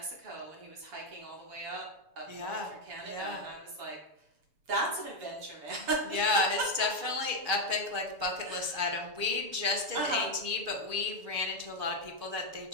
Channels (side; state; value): left; late; 7.0 ms